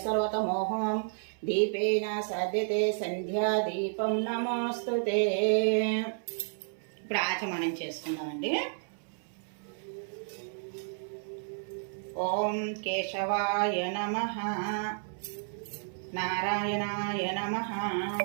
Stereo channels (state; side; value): silent; left; 57 dB below the other